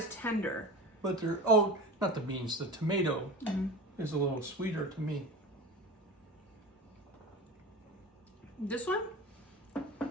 tender. But they're, oh, not the beans, the tomato is a little sweeter to me. This one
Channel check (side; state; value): both; normal; correlation 0.31